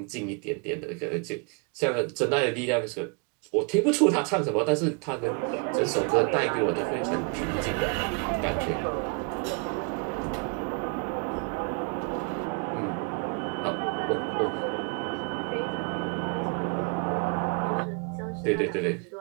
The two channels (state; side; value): quieter; left; 36.0 dB